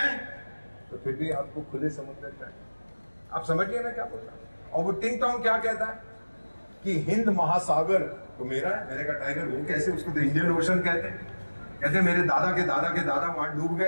तो फिर भी आपको खुले समुद्र चाहिए. आप समझिए मैं क्या बोल रहा हूं. और वो टिंग टोंग क्या कहता है कि हिंद महासागर तो मेरा है. मैंने कहा टाइगर वो कैसे? उसको तो इंडियन ओशन कहते हैं. कहते मेरे दादा के दादा के दादा वहां डूब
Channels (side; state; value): both; inverted; correlation -1.00